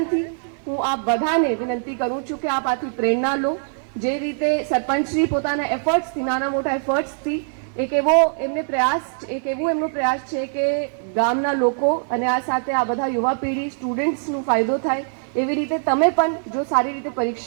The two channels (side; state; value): left; silent; digital silence